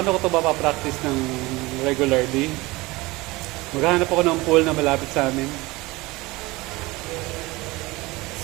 ko ito mapapractice ng regularly? Maghahanap ako ng pool na malapit sa amin.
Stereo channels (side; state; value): left; quieter; 21.6 dB